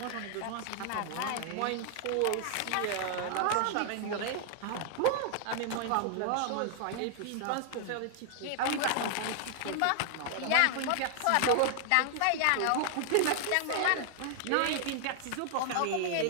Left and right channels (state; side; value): different; both; correlation 0.00